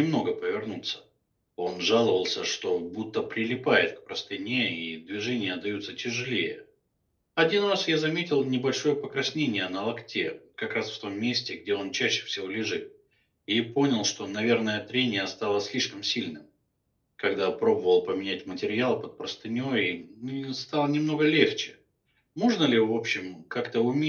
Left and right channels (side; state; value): both; identical; correlation 1.00